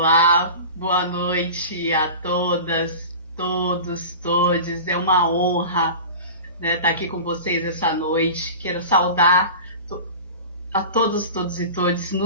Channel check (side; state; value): both; inverted; correlation -0.34